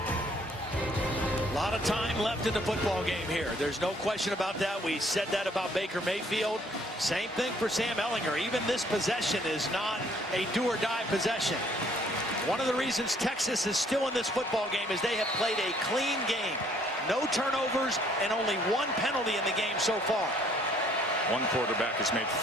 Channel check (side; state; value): both; normal; correlation 0.62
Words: A lot of time left in the football game here. There's no question about that. We said that about Baker Mayfield. Same thing for Sam Ehlinger. Even this possession is not a do-or-die possession. One of the reasons Texas is still in this football game is they have played a clean game. No turnovers and only one penalty in the game so far. One quarterback has made